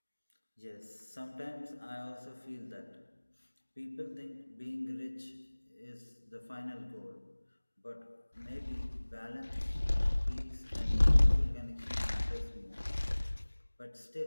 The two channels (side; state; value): both; inverted; correlation -1.00